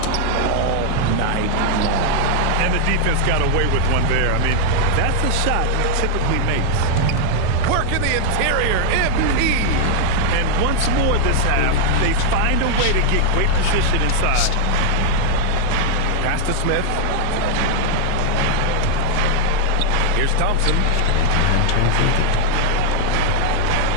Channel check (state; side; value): different; both; correlation 0.00